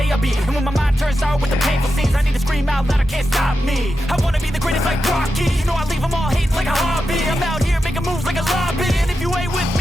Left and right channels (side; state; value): both; normal; correlation 0.89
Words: I be. And when my mind turns sour with the painful scenes, I need to scream out loud, I can't stop me. I wanna be the greatest like Rocky. You know I leave them all hating like a hobby. I'm out here making moves like a lobby. And if you ain't with